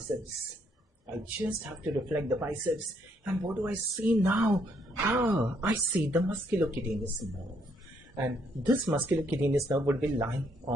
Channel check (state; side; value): normal; both; correlation 0.71